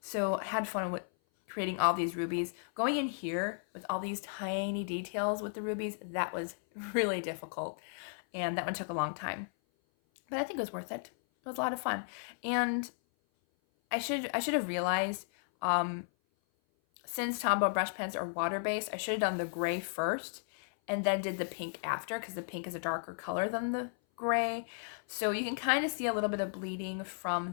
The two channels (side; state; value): right; silent; 55 dB below the other